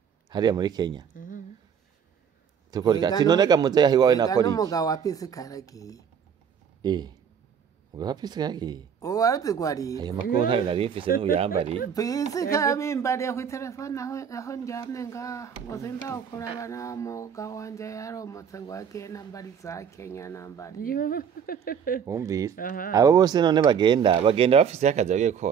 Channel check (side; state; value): left; quieter; 7.5 dB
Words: hariya muri Kenya tukora ati none gamuze yahi wawe nakora iki n'umugabo wa pisi karagiye umugabo wa pisi karagiye uwaruzi gwari ayo makuru ntari nari mfise n'uyambari pisi kabimbariye ku telefone aho njyamye ngo sinzawukuraba na mugabo wanje yaromotse ngo agiye nambari za Kenya nambari wumvise abo bose none bagenda bafise akazi bagiye